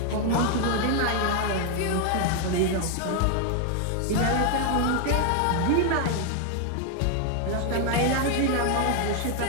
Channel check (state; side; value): different; both; correlation 0.01